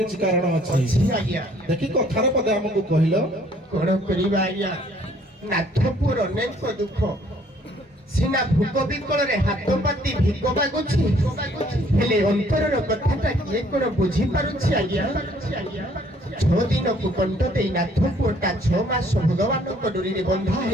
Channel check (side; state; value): both; normal; correlation 0.61